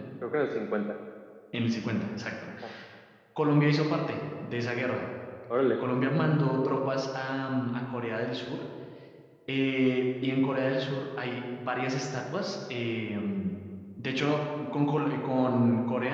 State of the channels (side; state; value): both; identical; correlation 1.00